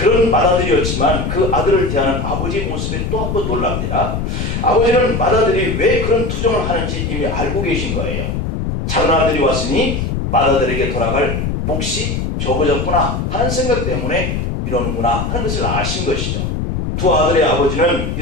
맏아들이었지만 그 아들을 대하는 아버지의 모습에 또 한 번 놀랍니다. 아버지는 맏아들이 왜 그런 투정을 하는지 이미 알고 계신 거예요. 작은 아들이 왔으니 맏아들에게 돌아갈 몫이 적어졌구나 하는 생각 때문에 이러는구나 하는 것을 아신 것이죠. 두 아들의 아버지는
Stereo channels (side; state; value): left; noise; rumble, 2 dB below the sound